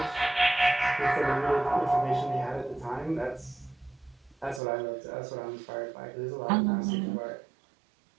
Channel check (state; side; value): drops out; left; at 4.6 s